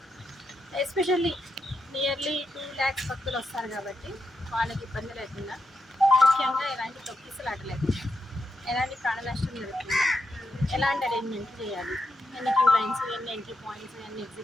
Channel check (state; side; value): normal; both; correlation 0.84